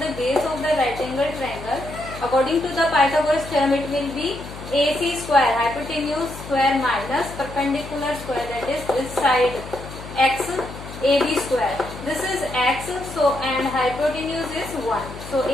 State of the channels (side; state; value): left; noise; hum, 13 dB below the sound